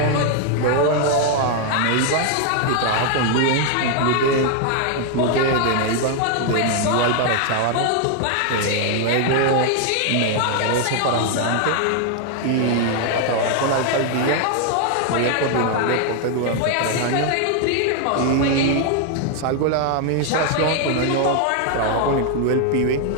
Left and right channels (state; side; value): different; both; correlation 0.00